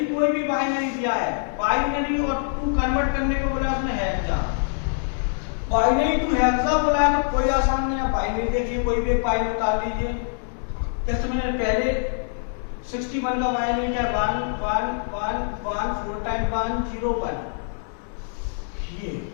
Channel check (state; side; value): silent; right; digital silence